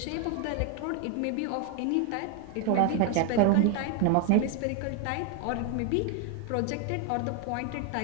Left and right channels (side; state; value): both; different; correlation 0.01